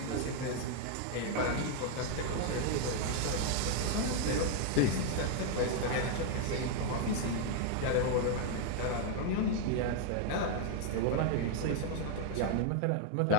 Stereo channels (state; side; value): different; both; correlation 0.00